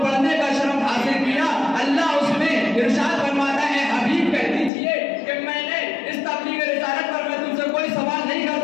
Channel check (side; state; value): right; drops out; at 4.7 s